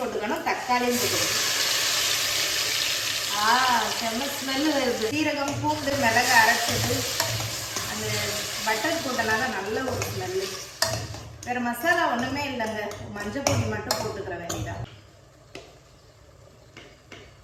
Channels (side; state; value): both; identical; correlation 1.00